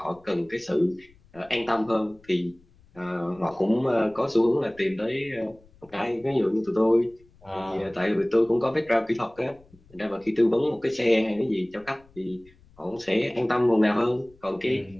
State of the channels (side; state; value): left; noise; rumble, 28 dB below the sound